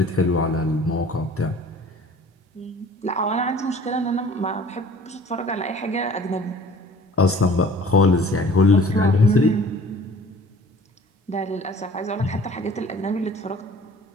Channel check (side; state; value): both; normal; correlation 0.49